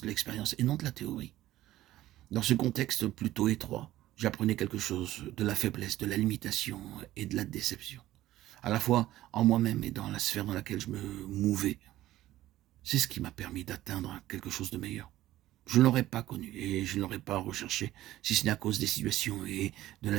de l'expérience et non de la théorie. Dans ce contexte plutôt étroit, j'apprenais quelque chose de la faiblesse, de la limitation et de la déception, à la fois en moi-même et dans la sphère dans laquelle je me mouvais. C'est ce qui m'a permis d'atteindre quelque chose de meilleur. Je ne l'aurais pas connu et je ne l'aurais pas recherché, si ce n'est à cause des situations et de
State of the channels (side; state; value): left; quieter; 14.8 dB